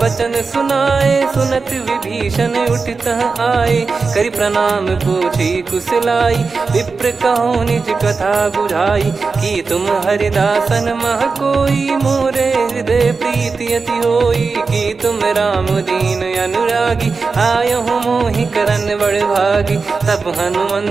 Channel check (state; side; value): quieter; left; 4.5 dB